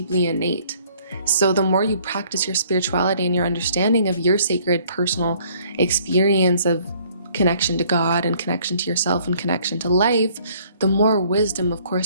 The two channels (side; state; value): both; inverted; correlation -0.60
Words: innate. So the more you practice your spirituality and your understanding of your sacred personal experience of connection to God and connection to yourself and connection to life, the more wisdom, of